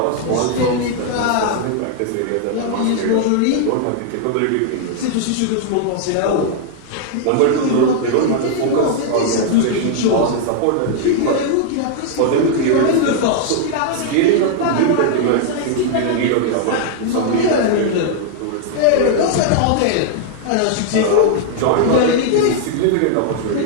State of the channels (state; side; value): different; both; correlation 0.00